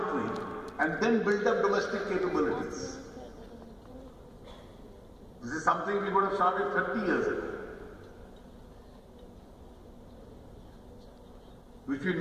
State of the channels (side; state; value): both; identical; correlation 1.00